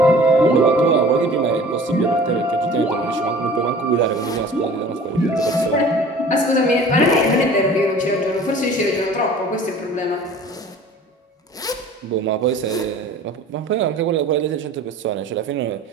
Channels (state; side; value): normal; both; correlation 0.45